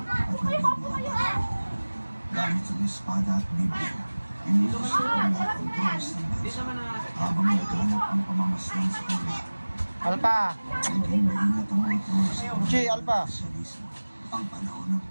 nabibigyan. Gamit ang espada at Biblia, inutos sa ola ang Diyos ng bansa habang naghanap ang pamamasdan sa kanila. Alpa! Naging maingat ang mga Diyos sa Uchi, Alpa! Sosyalismo. Ang panahon ng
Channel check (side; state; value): both; inverted; correlation -1.00